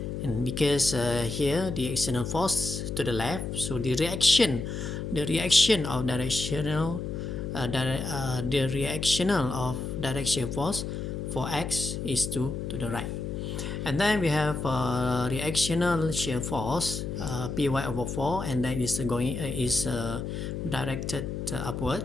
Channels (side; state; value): left; noise; hum, 4 dB below the sound